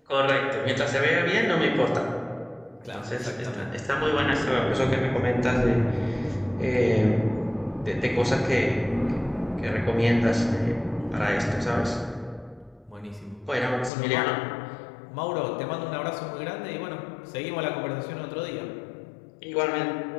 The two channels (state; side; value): drops out; right; at 13.9 s